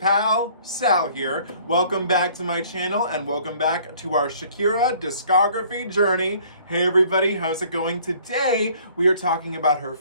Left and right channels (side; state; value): both; inverted; correlation -0.56